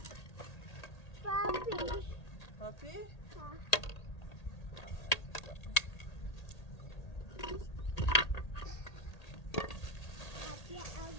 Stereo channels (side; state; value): right; late; 1.8 ms